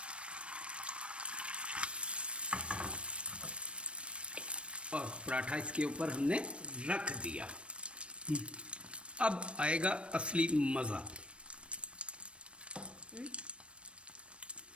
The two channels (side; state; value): left; late; 0.059 ms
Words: और पराठा इसके ऊपर हमने रख दिया। अब आएगा असली मज़ा।